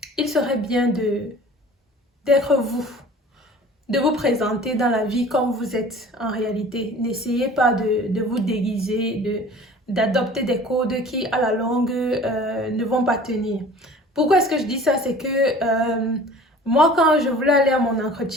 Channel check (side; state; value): both; normal; correlation 0.45